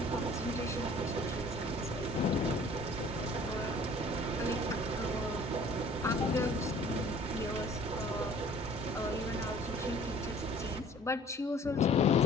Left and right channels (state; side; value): normal; both; correlation 0.51